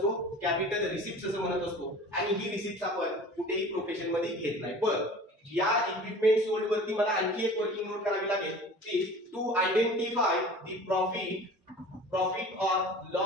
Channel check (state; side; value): normal; both; correlation 0.42